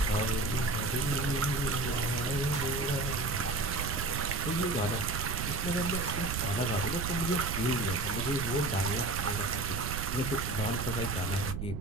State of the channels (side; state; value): right; noise; rumble, 4 dB below the sound